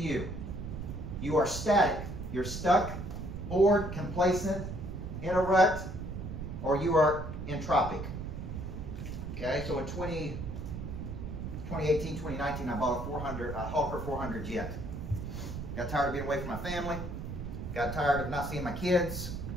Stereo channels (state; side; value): noise; right; rumble, 6 dB below the sound